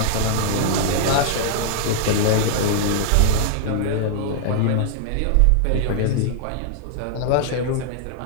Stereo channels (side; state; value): both; different; correlation -0.01